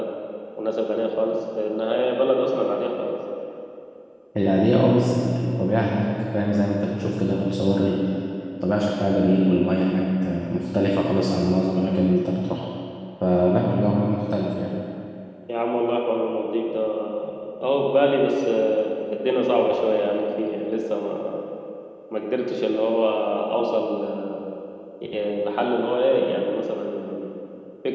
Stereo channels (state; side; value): identical; both; correlation 1.00